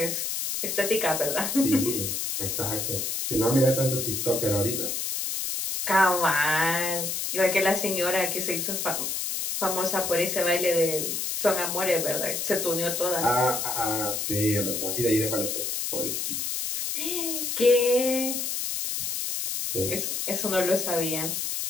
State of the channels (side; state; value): left; noise; hiss, 2 dB below the sound